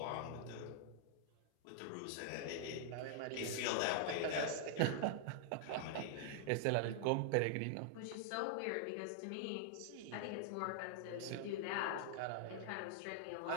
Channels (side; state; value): both; different; correlation -0.01